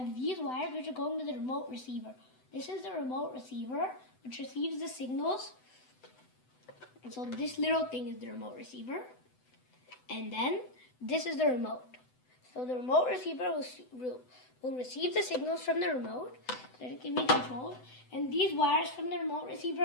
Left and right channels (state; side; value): late; right; 7.9 ms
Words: these wires which are going to the remote receiver. This is the remote receiver which receives the signals, and so this little thing is the remote receiver, and then this is the remote. So the remote receiver will receive the signals from the remote so that it can be controlled, and these wires from the remote receiver